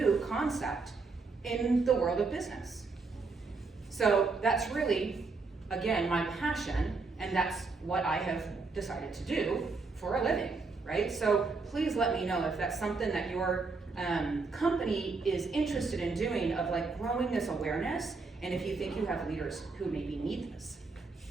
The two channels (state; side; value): quieter; left; 4.2 dB